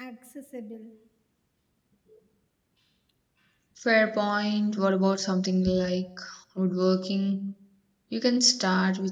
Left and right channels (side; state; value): both; identical; correlation 1.00